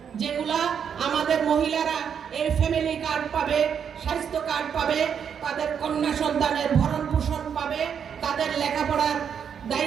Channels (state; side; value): quieter; left; 7.7 dB